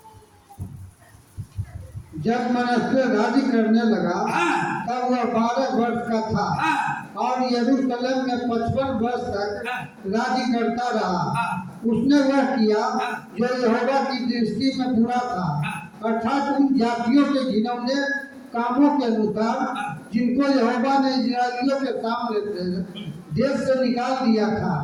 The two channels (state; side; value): identical; both; correlation 1.00